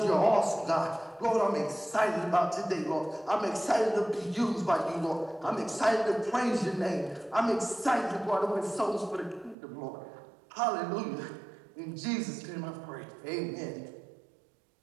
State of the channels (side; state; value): left; drops out; at 9.6 s